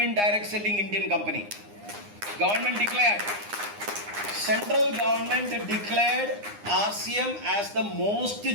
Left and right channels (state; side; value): late; left; 9.8 ms